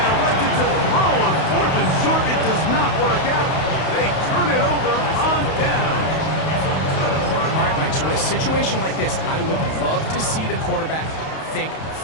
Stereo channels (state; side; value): late; right; 31 ms